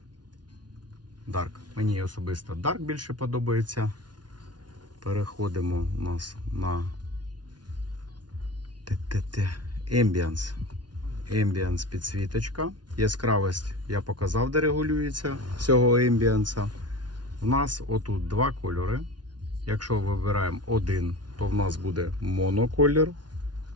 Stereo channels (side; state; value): left; late; 0.70 ms